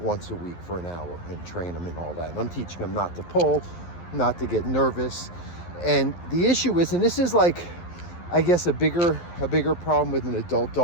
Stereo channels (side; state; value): right; late; 11 ms